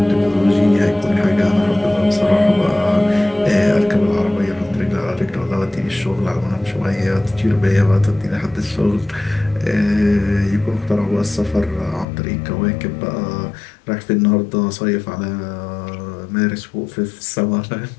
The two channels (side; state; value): right; drops out; at 12.1 s